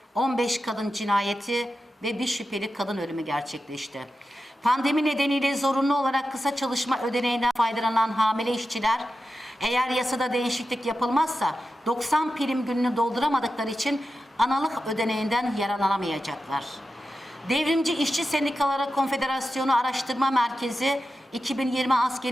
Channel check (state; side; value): normal; both; correlation 0.91